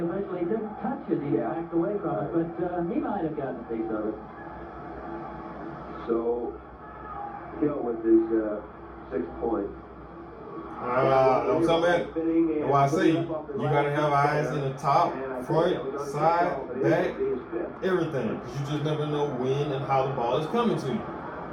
didn't touch it. He backed away from it, but he might have gotten a piece of it. So, Hill with his 6th point. I'm talking about, why I say, you got to have eyes in the top, front, side, back, everything. Because you just never know when and how the ball is coming to you.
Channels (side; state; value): both; identical; correlation 1.00